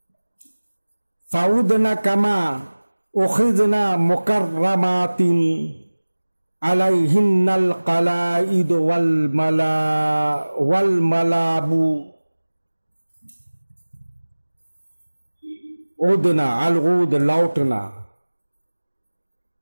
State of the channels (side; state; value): both; inverted; correlation -1.00